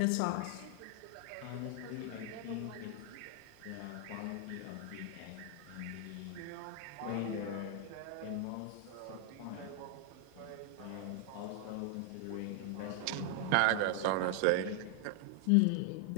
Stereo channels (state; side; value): different; both; correlation 0.00